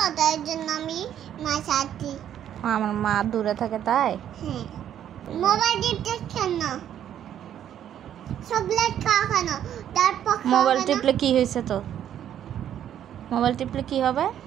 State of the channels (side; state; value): left; quieter; 10.3 dB